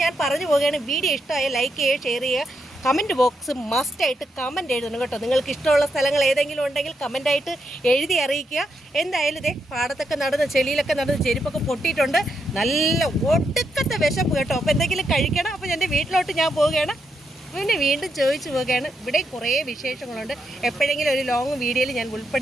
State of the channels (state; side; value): normal; both; correlation 0.81